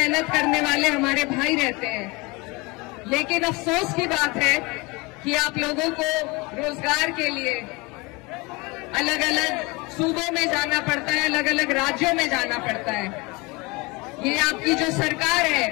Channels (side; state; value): right; quieter; 25.7 dB